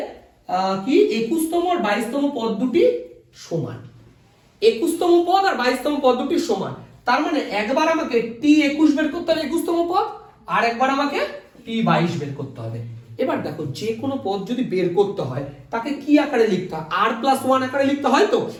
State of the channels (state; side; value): identical; both; correlation 1.00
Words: কি 21 তম আর 22 তম পদ দুটি সমান, 21 তম পদ আর 22 তম পদ দুটি সমান, তার মানে একবার আমাকে t 21 বের করতে হবে 21 তম পদ, আর একবার আমাকে t 22 বের করতে হবে। এবার দেখো যে কোনো পদ যদি বের করতে হয় তাকে কি আকারে লিখতে হয়, r প্লাস 1 আকারে লিখতে হয়, তো